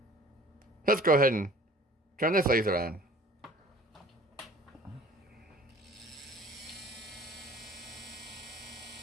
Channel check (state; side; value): normal; both; correlation 0.49